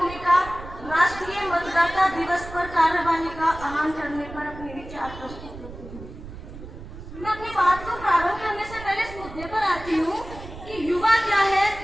राष्ट्रीय मतदाता दिवस पर कार्यवाही का आह्वान करने पर अपने विचार प्रस्तुत करती हूँ। मैं अपनी बात को प्रारंभ करने से पहले इस मुद्दे पर आती हूँ कि युवा क्या है,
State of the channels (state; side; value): noise; right; rumble, 14 dB below the sound